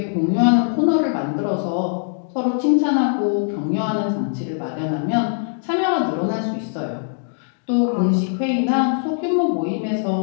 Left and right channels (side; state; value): right; silent; digital silence